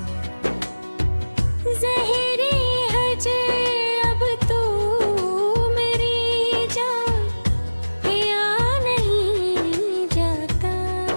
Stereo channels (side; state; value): both; inverted; correlation -1.00